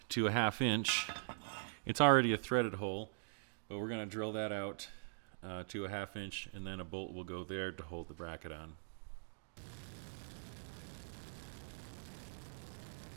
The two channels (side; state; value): left; silent; digital silence